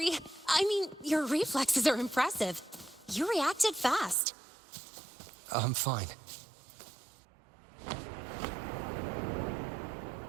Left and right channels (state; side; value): drops out; left; at 4.2 s